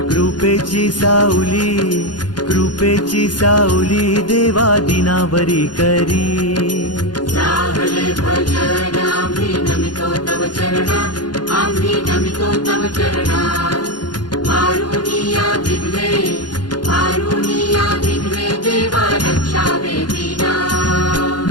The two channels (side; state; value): right; late; 0.70 ms